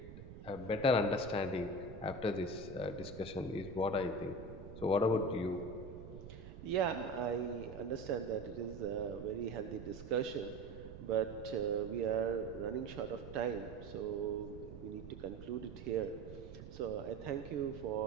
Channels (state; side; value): noise; right; rumble, 12 dB below the sound